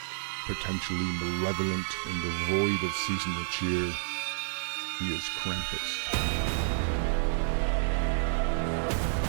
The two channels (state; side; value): silent; left; digital silence